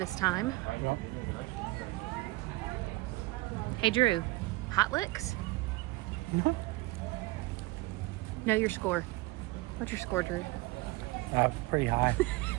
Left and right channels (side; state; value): left; quieter; 20.6 dB